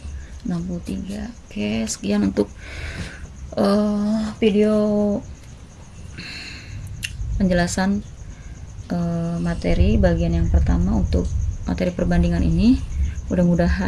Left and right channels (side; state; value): both; identical; correlation 1.00